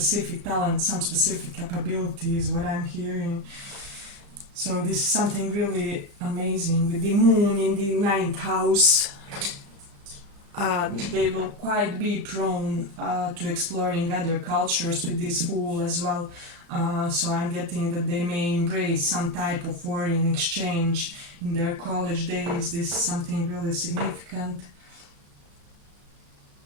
talent, some specific capabilities, what I'm hearing. So this is something really amazing. With the moon in the ninth house, they will quite be prone to exploring other cultures with this fool as well. So I'm getting that they may embrace some type of foreign exchange in their college days. This is something really significant.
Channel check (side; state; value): left; late; 35 ms